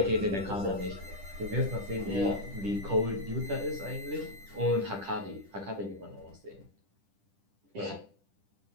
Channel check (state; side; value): late; left; 10 ms